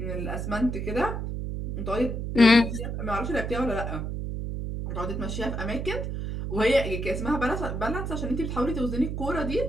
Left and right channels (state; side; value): noise; right; hum, 4 dB below the sound